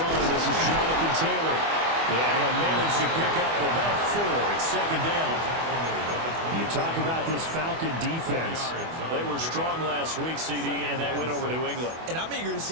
This is Jonathan Taylor. And he'll manage to pick up about 4. It's second down. You talk about this Falcon defense. They were strong last week, CD, and that went over New England. And I'm eager to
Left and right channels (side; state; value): left; late; 24 ms